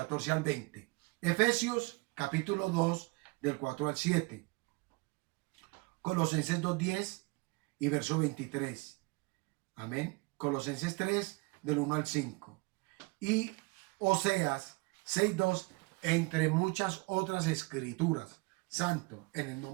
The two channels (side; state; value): left; quieter; 27.9 dB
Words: al 20. Efesios, capítulo 2, del 4 al 7. Colosenses 2:10 y verso 23. Amén. Colosenses 3, del 1 al 5. Y Oseas 6:2, entre muchas otras escrituras. Santo, en el